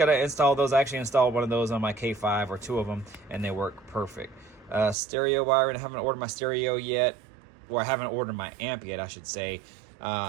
install those. I actually installed one of those on my K5, or two of them, and they work perfect. Stereo wiring, I haven't ordered my stereo yet, or I haven't ordered my amp yet, I should say.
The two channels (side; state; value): left; drops out; at 5.0 s